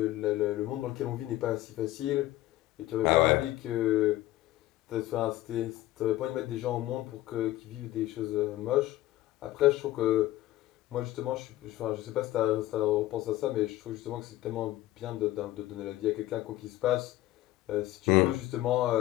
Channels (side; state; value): right; quieter; 15.8 dB